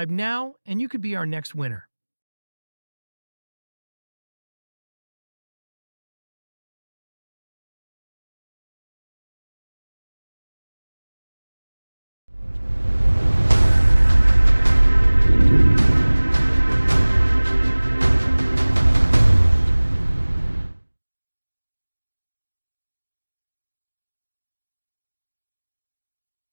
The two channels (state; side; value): inverted; both; correlation -1.00